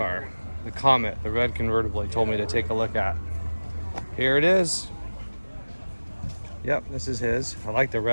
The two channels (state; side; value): inverted; both; correlation -1.00